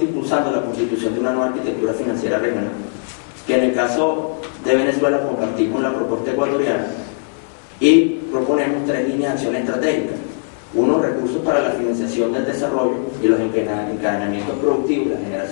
impulsando la constitución de una nueva arquitectura financiera regional, que en el caso de Venezuela compartimos la propuesta ecuatoriana y proponemos 3 líneas de acción estratégicas. 1, recursos para la financiación del desarrollo y los encadenamientos productivos, la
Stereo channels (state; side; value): silent; right; 66 dB below the other